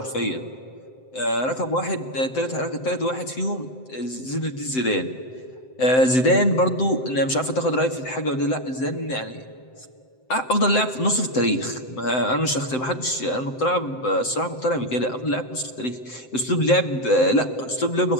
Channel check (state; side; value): late; right; 7.8 ms